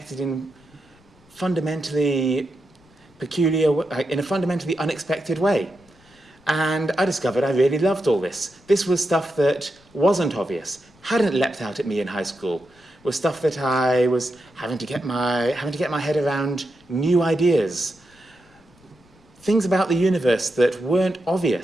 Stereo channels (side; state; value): left; noise; rumble, 30 dB below the sound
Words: in fundamentally peculiar, in a fundamentally unexpected way. And I discovered I really loved all this. This was stuff that wasn't obvious, hadn't leapt out at me in high school, was stuff that I was having to get my head around new ideas. Things about the universe that weren't